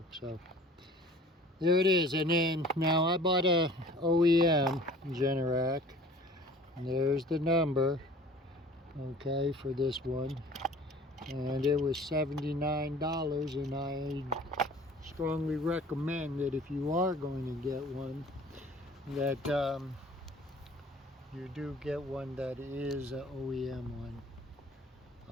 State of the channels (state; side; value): normal; both; correlation 0.47